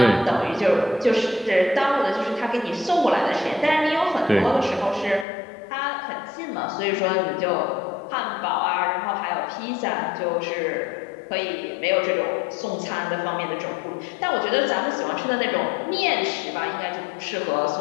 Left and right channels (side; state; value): right; drops out; at 5.2 s